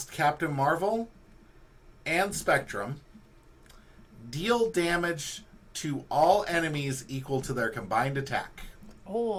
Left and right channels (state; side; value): identical; both; correlation 1.00